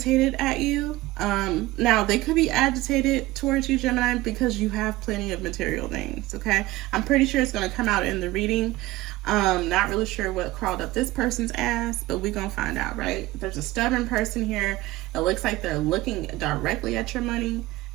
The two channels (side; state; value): left; quieter; 18.1 dB